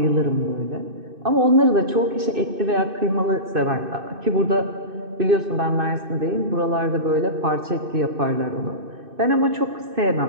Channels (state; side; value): late; left; 2.6 ms